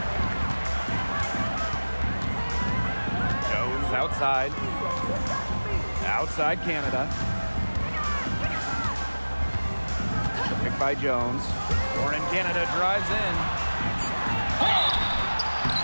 Jones outside. Outside Canada. Picked by Jones. Born in Canada drives in.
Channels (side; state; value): both; inverted; correlation -1.00